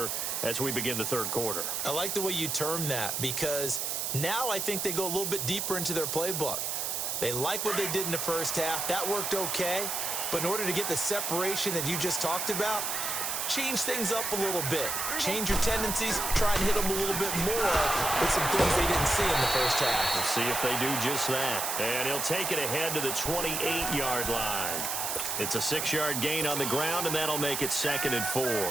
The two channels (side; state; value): right; noise; hiss, 1 dB below the sound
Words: as we begin the third quarter. I like the way you term that because now I think they go a little bit deeper into their playbook. They like what they did in the first half. That worked okay. But in order to get the separation that you just talked about, change things up a little bit. Change your tendencies. Try and hit them a little bit more with some things they didn't see in the first half. We'll see if they do just that. And he'll take it ahead to the 28-yard line. It's a 6-yard gain on the ground, and that'll make it 2nd and 4.